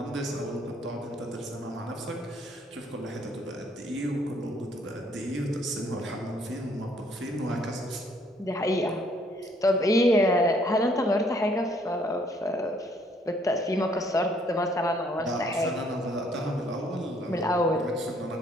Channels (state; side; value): normal; both; correlation 0.65